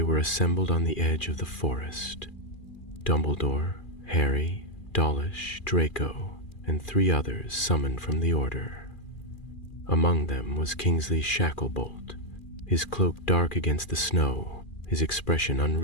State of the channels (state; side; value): late; right; 2.4 ms